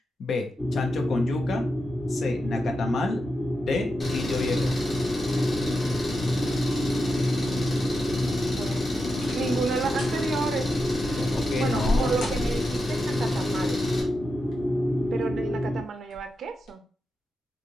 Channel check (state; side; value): normal; both; correlation 0.88